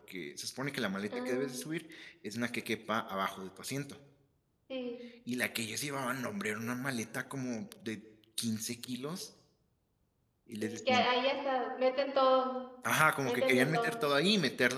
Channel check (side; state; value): both; identical; correlation 1.00